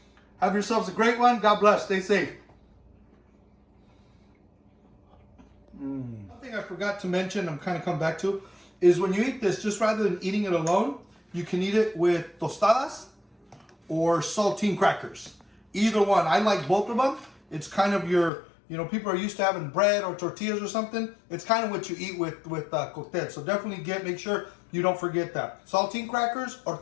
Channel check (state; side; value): drops out; right; at 18.3 s